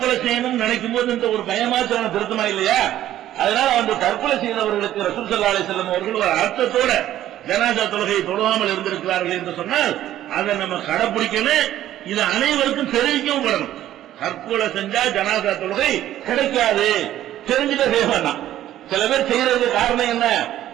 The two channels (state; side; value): quieter; left; 12.8 dB